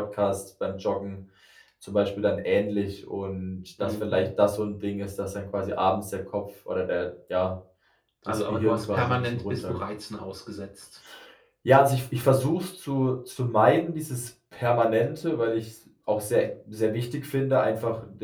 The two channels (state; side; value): identical; both; correlation 1.00